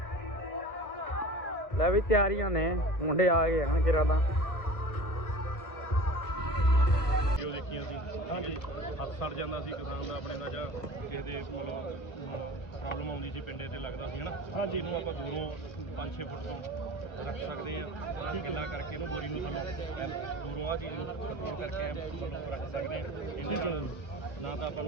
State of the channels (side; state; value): right; late; 1.4 ms